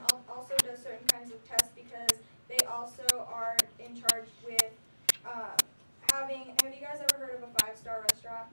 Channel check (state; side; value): inverted; both; correlation -1.00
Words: also does certain kinds of tests because they also are in charge with, have you guys ever heard of a 5-star restaurant?